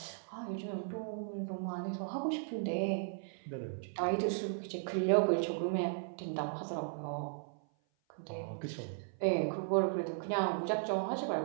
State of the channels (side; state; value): left; silent; 53 dB below the other